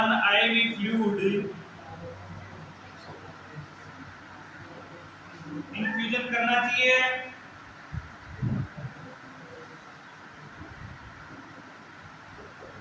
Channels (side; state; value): both; identical; correlation 1.00